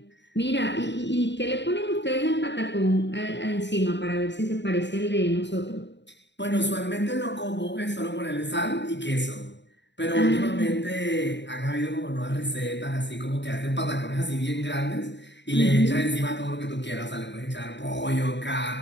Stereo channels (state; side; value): late; right; 0.52 ms